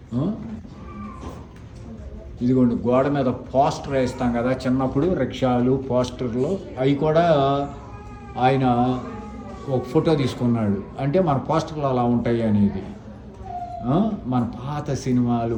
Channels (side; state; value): both; identical; correlation 1.00